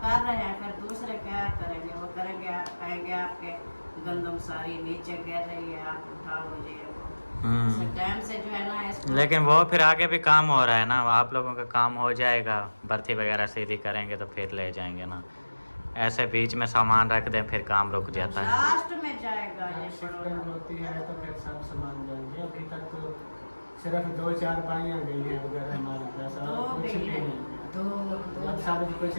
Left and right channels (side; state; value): both; inverted; correlation -1.00